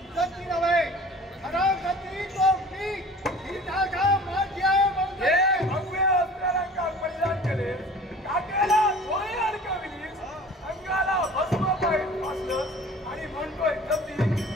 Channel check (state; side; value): normal; both; correlation 0.44